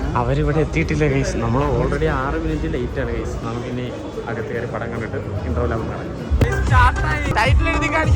അവരിവിടെ എത്തിയിട്ടില്ല ഗൈസ്. നമ്മൾ ഓൾറെഡി 6 മിനിറ്റ് ലേറ്റ് ആണ് ഗൈസ്. നമുക്കിനി അകത്ത് കയറി പടം കണ്ടിട്ട് ഇന്റർവ്യൂ ആകും കാണാം.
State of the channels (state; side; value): identical; both; correlation 1.00